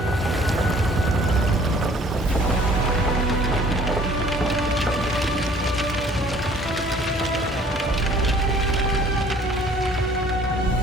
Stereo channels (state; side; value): normal; both; correlation 0.54